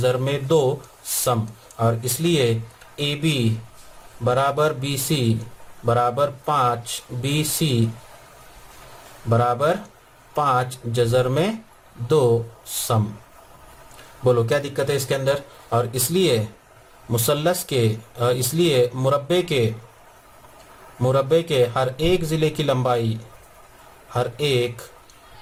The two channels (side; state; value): both; identical; correlation 1.00